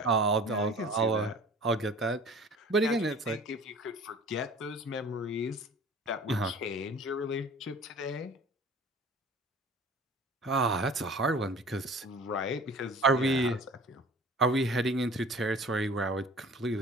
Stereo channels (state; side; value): normal; both; correlation 0.45